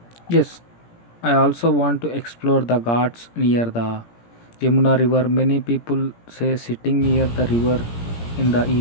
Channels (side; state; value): right; late; 17 ms